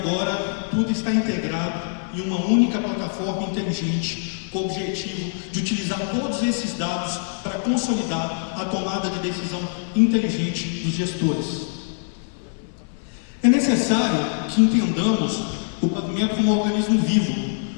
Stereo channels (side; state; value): right; silent; 63 dB below the other